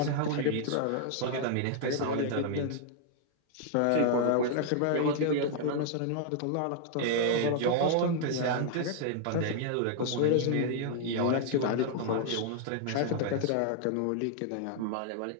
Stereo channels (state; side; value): different; both; correlation -0.01